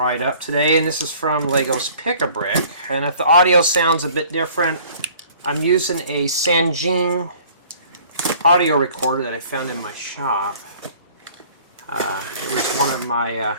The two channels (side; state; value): both; inverted; correlation -0.53